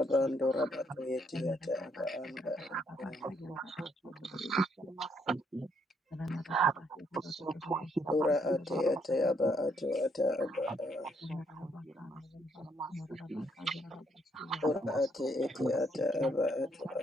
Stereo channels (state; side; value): normal; both; correlation 0.71